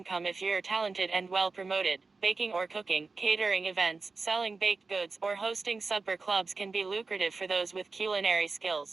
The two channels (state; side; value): quieter; left; 4.1 dB